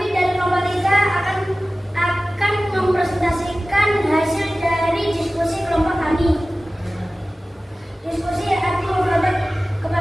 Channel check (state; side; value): normal; both; correlation 0.97